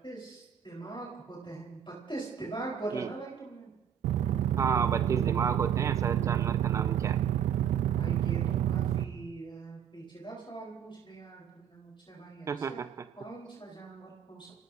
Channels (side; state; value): left; quieter; 8.7 dB